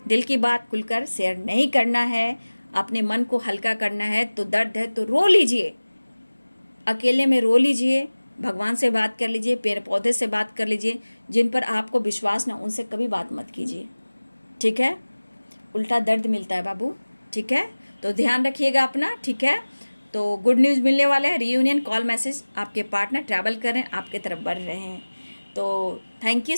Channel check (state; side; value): inverted; both; correlation -1.00